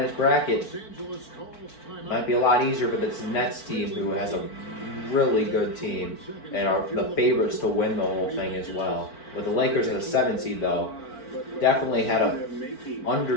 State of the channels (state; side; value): late; right; 4.5 ms